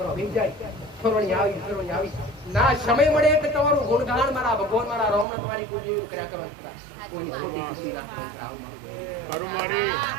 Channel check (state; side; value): drops out; left; at 5.2 s